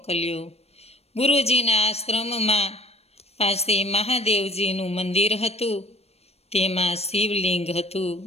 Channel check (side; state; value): right; late; 0.30 ms